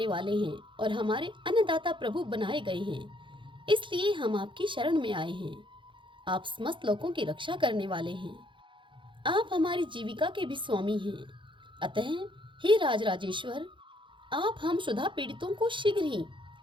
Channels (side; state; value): left; late; 0.24 ms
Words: वाले हैं और हमारे अन्नदाता प्रभु बनाए गए हैं, इसलिए हम आपकी शरण में आए हैं। आप समस्त लोगों की रक्षा करने वाले हैं। आप हमारी जीविका के भी स्वामी हैं। अतः हे राजराजेश्वर, आप हम क्षुधा पीड़ितों को शीघ्र ही